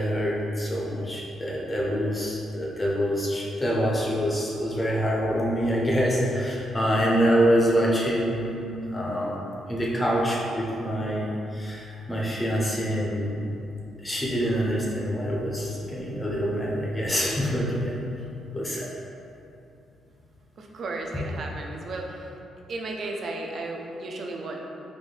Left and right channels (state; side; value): normal; both; correlation 0.81